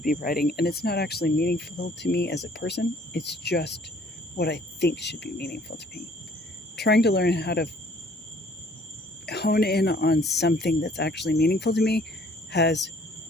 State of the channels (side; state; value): both; normal; correlation 0.58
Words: be writing, and it's not actually meaningful to me as a person. It's just what I think should be meaningful to me. Trying to learn how to hone in on something that's actually meaningful to me